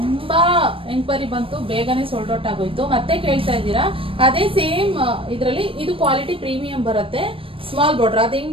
ಎಂಕ್ವೈರಿ ಬಂತು, ಬೇಗನೆ ಸೋಲ್ಡ್ ಔಟ್ ಆಗೋಯ್ತು. ಮತ್ತೆ ಕೇಳ್ತಾ ಇದ್ದೀರಾ. ಅದೇ ಸೇಮ್ ಇದರಲ್ಲಿ ಇದು ಕ್ವಾಲಿಟಿ ಪ್ರೀಮಿಯಂ ಬರುತ್ತೆ, ಸ್ಮಾಲ್ ಬಾರ್ಡರ್. ಅದು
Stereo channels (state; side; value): late; left; 0.26 ms